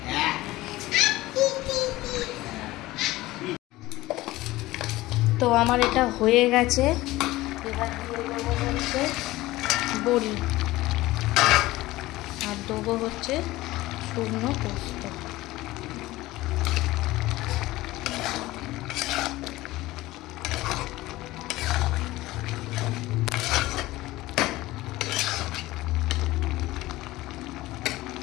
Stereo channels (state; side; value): quieter; right; 18.1 dB